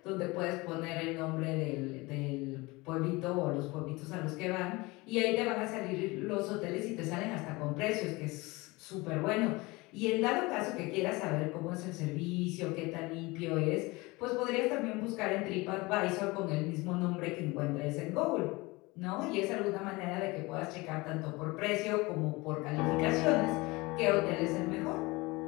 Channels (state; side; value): quieter; right; 23.4 dB